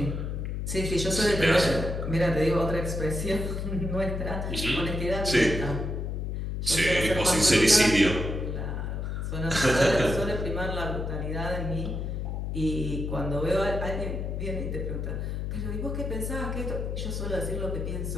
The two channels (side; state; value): left; noise; hum, 3 dB below the sound